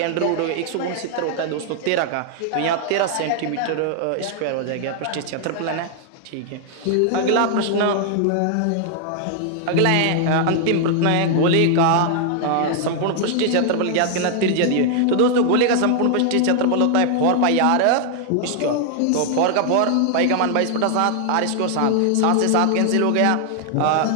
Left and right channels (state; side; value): different; both; correlation 0.00